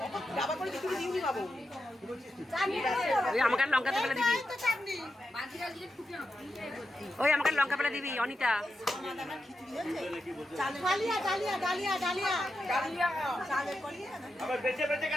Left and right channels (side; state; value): both; normal; correlation 0.88